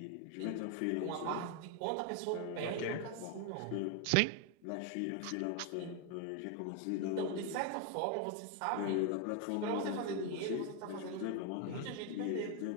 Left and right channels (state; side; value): different; both; correlation 0.01